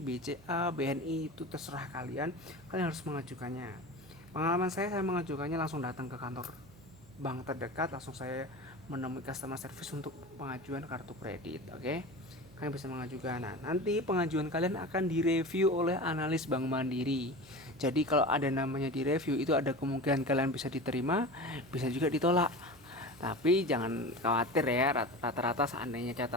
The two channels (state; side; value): noise; right; hum, 24 dB below the sound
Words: BNI, itu terserah kalian. Kalian harus mengajukannya. Pengalaman saya mengajukannya langsung datang ke kantor bank terdekat, langsung saya menemui customer service untuk pengajuan kartu kredit. Oke, kalian bisa mengajukan. Nah, nanti pengajuan kalian akan direview oleh analis Bank Mandiri. Jadi kalau ada namanya direview, itu ada kemungkinan kalian bisa diterima, bisa juga ditolak. Tapi jangan khawatir ya, rata-rata seandainya